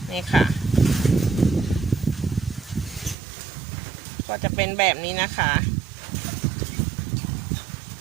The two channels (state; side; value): drops out; left; at 3.2 s